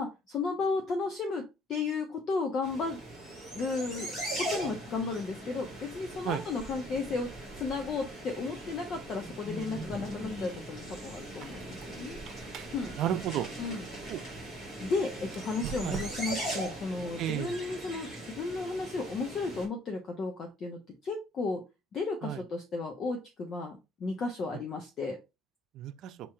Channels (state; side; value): normal; both; correlation 0.59